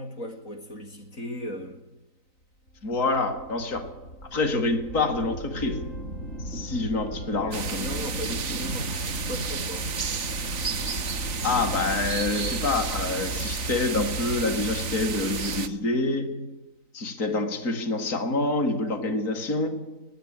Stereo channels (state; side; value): late; right; 3.9 ms